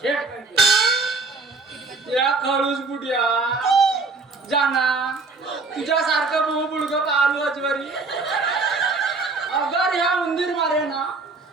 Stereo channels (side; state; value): left; quieter; 3.9 dB